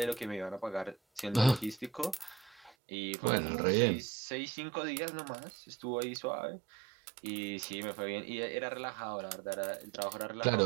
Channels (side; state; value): left; drops out; at 2.8 s